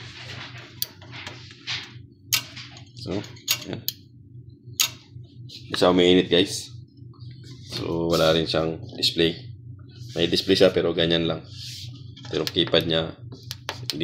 So ayan. Hindi siya umiinit guys. So wala rin siyang display. May display siya pero ganyan lang. Pero keypad niya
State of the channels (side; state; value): both; identical; correlation 1.00